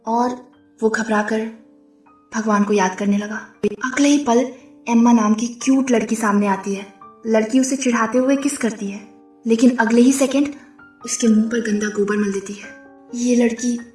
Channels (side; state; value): both; identical; correlation 1.00